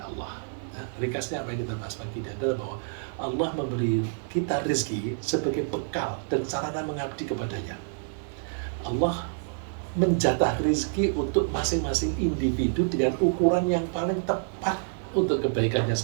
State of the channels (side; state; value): left; silent; 60 dB below the other